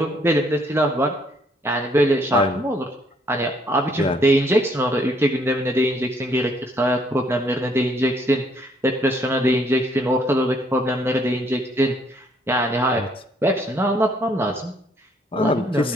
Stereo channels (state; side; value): normal; both; correlation 0.66